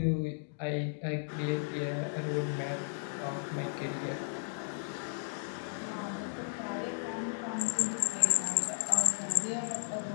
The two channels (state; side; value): silent; right; digital silence